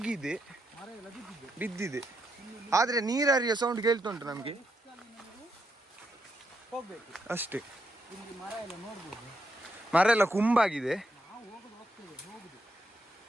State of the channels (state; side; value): normal; both; correlation 0.80